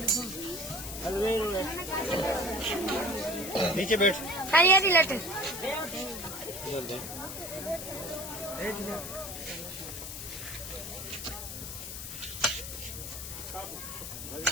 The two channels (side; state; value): left; noise; hiss, 8 dB below the sound